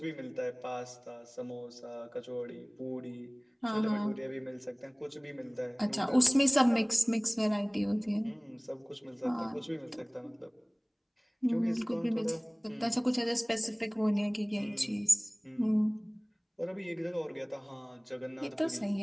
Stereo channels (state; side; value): identical; both; correlation 1.00